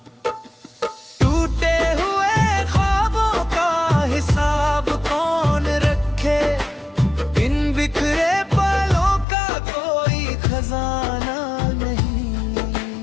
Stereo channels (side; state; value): right; drops out; at 9.2 s